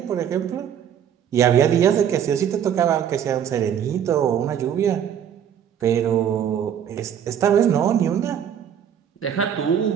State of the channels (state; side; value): quieter; left; 9.0 dB